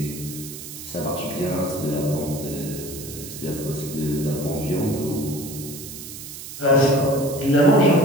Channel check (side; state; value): right; noise; hiss, 11 dB below the sound